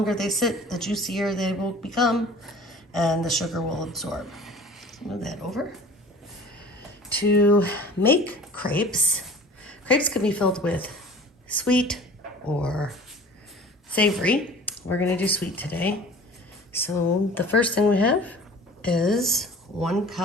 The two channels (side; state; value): both; normal; correlation 0.44